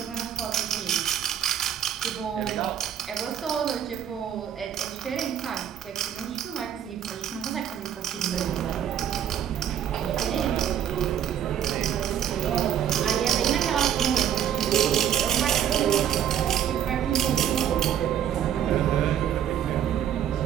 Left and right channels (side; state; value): left; quieter; 9.7 dB